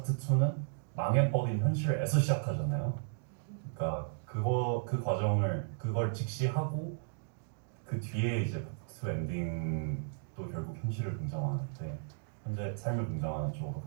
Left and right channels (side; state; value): left; silent; digital silence